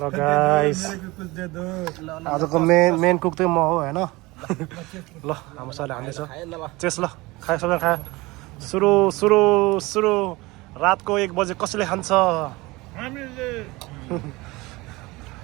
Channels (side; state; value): left; quieter; 22.1 dB